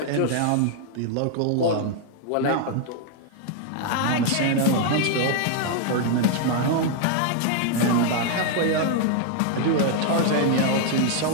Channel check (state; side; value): different; both; correlation 0.00